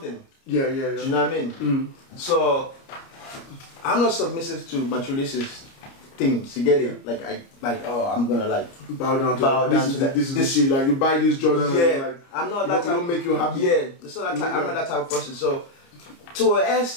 Yeah. Do you know what I mean? So, I'm not submissive to materialistic things. You get it? Like, I'm gonna like bow down to that. This is the shit. Like, you buy this Jordan. Yeah, and like, I'm not that type. Don't make you happy. Yeah, I'm not that type of person. So, to an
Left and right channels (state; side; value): late; right; 29 ms